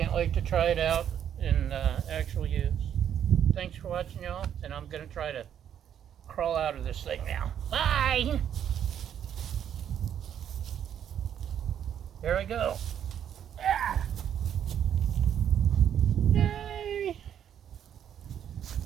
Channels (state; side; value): quieter; left; 9.4 dB